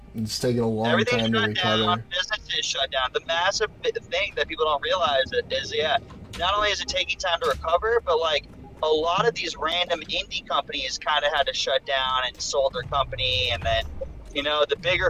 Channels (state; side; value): identical; both; correlation 1.00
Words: It's taking a long Everything time to shut recover. down, businesses shut down. The massive thing that people don't realize is, yeah, not only is it taking time to recover, but like a lot of these random indie companies kind of had to shut down and sold their company, and then, you know, the bigger